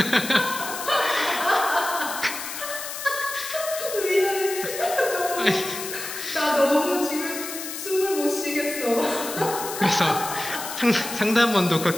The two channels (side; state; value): left; noise; hiss, 8 dB below the sound